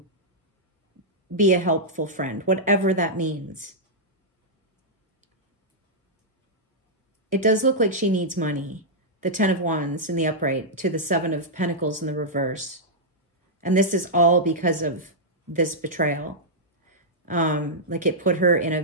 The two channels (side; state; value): both; normal; correlation -0.09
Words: be a helpful friend, whatever that means. It does look like she needs money. The 10 of Wands in the upright to the 7 of Pentacles in the reverse. And this is all because of this betrayal. Like it put her in a